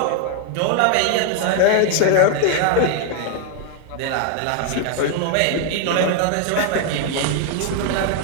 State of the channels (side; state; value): both; different; correlation 0.01